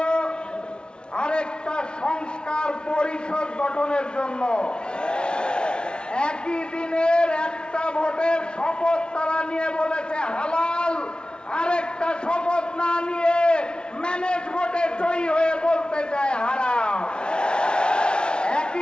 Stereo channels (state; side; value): late; right; 0.055 ms